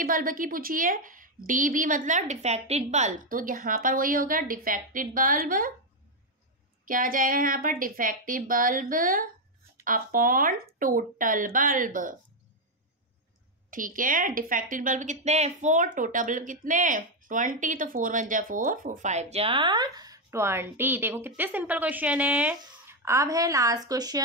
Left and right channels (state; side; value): normal; both; correlation 0.03